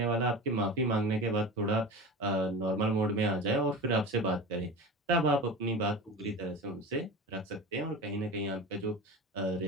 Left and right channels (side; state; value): both; normal; correlation 0.31